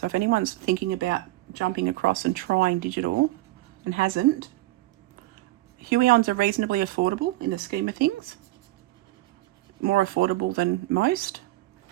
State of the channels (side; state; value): left; quieter; 17.9 dB